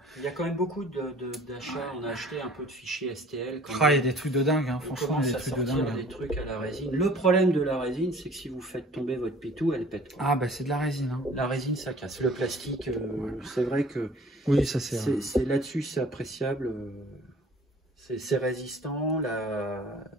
Il y a quand même beaucoup d'achats. On a acheté un peu de fichiers STL. Il y a des trucs de dingue, hein. Franchement, il y a des trucs de dingue. Des trucs à la résine. Le problème de la résine, c'est que si vous faites tomber votre pitou, elle pète. Quoi. Ah bah c'est de la résine. Hein. La résine, ça casse. Le plastique, c'est vrai que... Oui, ça c'est là-dessus, c'est appréciable. C'est résistant.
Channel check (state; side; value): normal; both; correlation 0.50